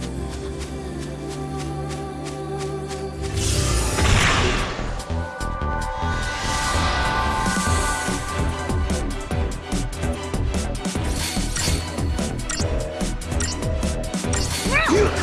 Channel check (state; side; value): identical; both; correlation 1.00